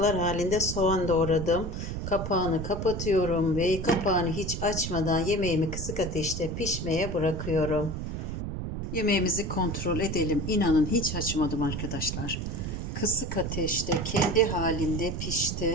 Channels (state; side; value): noise; right; rumble, 5 dB below the sound